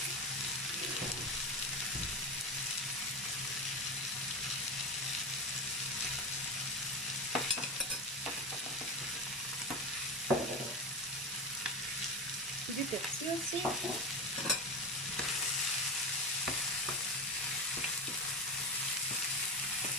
Du persil aussi.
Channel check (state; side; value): normal; both; correlation 0.20